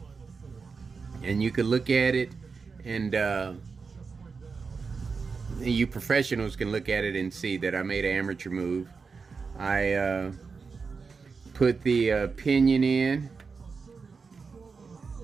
And you can look at it and you professionals can look at it and see that I made an amateur move. I put the pinion in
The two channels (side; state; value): left; quieter; 5.0 dB